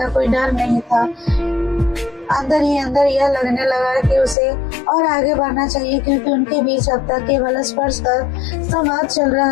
कोई डर नहीं था। अंदर ही अंदर यह लगने लगा कि उसे और आगे बढ़ना चाहिए, क्योंकि उनके बीच अब तक केवल स्पर्श का संवाद चल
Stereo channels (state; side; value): drops out; right; at 4.4 s